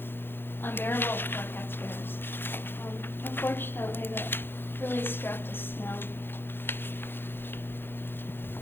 unbearable for our taxpayers. Unfortunately, that really strapped us down.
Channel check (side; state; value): right; late; 0.10 ms